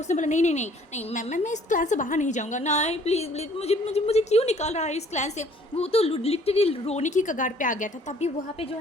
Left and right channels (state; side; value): normal; both; correlation 0.58